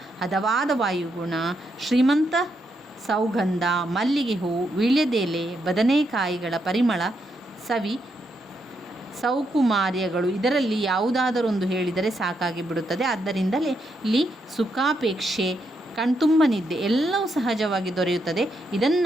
ಹದವಾದ ವಾಯುಗುಣ, ಶ್ರೀಮಂತ ಸೌಗಂಧ, ಮಲ್ಲಿಗೆ ಹೂವು, ವೀಳ್ಯದೆಲೆ, ಬದನೆಕಾಯಿಗಳ ಪರಿಮಳ, ಸವಿ ಸೌಕುಮಾರ್ಯಗಳು ಇದರಲ್ಲಿ ಯಾವುದಾದರೊಂದು ಹೇಳಿದರೆ ಸಾಕಾಗಿ ಬಿಡುತ್ತದೆ. ಆದ್ದರಿಂದಲೇ ಇಲ್ಲಿ ಸುಖಾಪೇಕ್ಷೆ, ಕಣ್ತುಂಬ ನಿದ್ದೆ ಎಲ್ಲವೂ ಸಹಜವಾಗಿ ದೊರೆಯುತ್ತದೆ.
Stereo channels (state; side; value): normal; both; correlation 0.80